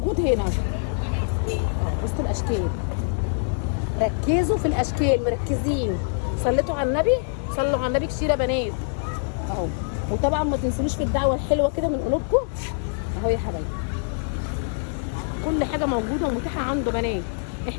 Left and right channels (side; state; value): right; silent; digital silence